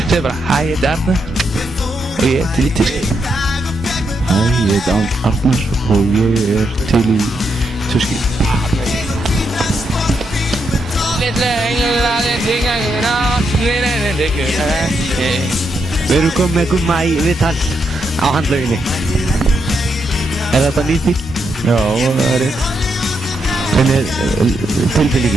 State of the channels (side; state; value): both; normal; correlation 0.81